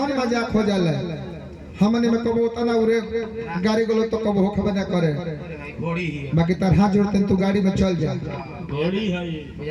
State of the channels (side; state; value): both; identical; correlation 1.00